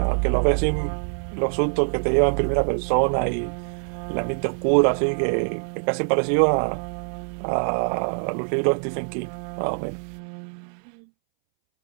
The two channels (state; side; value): silent; left; 63 dB below the other